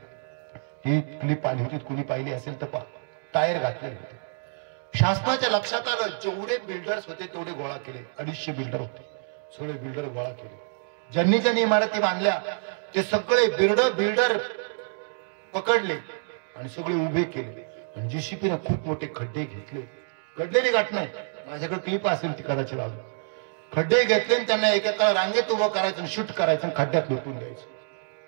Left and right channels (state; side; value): silent; left; digital silence